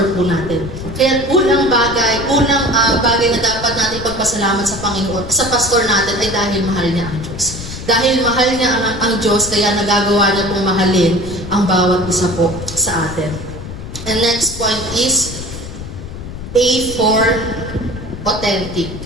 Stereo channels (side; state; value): left; noise; rumble, 10 dB below the sound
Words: po natin. Kaya unang bagay na dapat natin pagpasalamat sa Panginoon, sa pastor natin ay dahil mahal niya ang Diyos. Dahil mahal niya ang Diyos, kaya nagagawa niya pong mahalin ang bawat isa po sa atin. And next point is A for authentic.